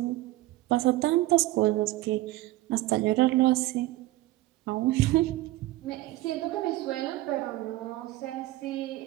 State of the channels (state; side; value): quieter; left; 17.5 dB